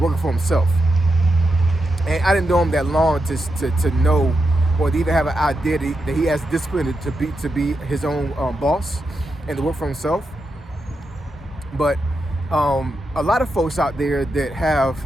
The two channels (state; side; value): normal; both; correlation 0.86